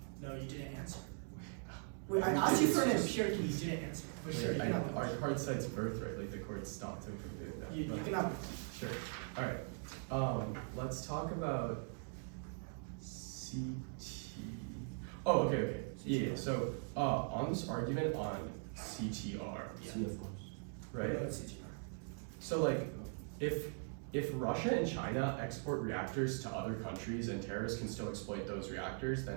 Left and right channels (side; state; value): left; silent; 51 dB below the other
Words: No, you didn't answer. Wait, I asked you for an empiric and you didn't answer. But sure, you can have a Our question. card cites birthright, like the court stopped him from doing that. You but- can have Sure. All right. Let's talk about CT. Oh, okay. Yeah. So, on this argument on CTR, Yeah. See, of course. right? Go ahead, CTR. So, like, if Russia and China export reactors to other countries and terrorists can still exploit those reactors,